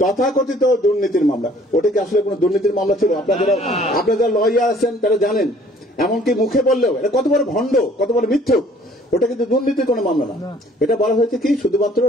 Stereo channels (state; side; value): normal; both; correlation 0.56